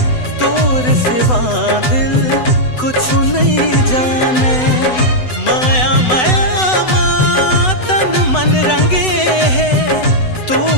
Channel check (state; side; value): late; right; 8.0 ms